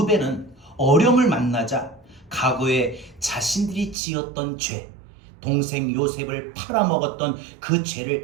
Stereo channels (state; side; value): drops out; left; at 4.0 s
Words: 어려움을 만나자 과거에 자신들이 지었던 죄, 동생 요셉을 팔아먹었던 그